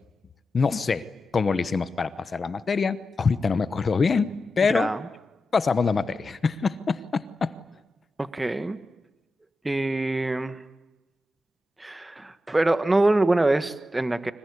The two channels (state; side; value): normal; both; correlation 0.91